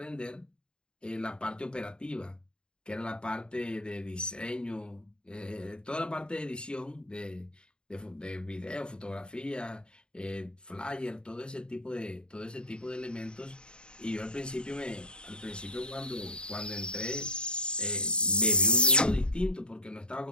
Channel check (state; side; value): late; right; 0.050 ms